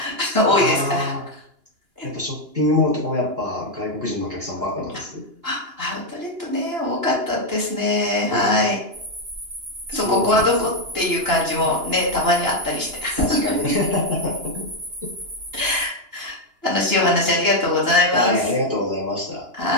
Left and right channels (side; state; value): left; late; 2.9 ms